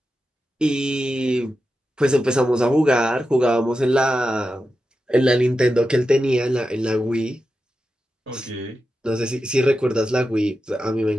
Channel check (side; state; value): both; normal; correlation 0.90